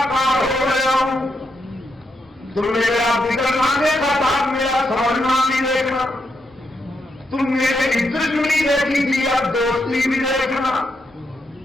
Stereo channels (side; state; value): both; normal; correlation 0.81